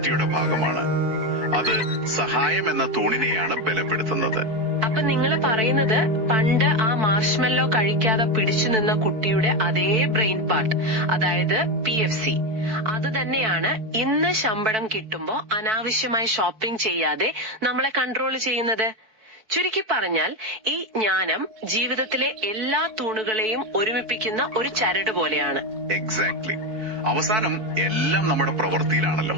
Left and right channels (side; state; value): left; late; 4.5 ms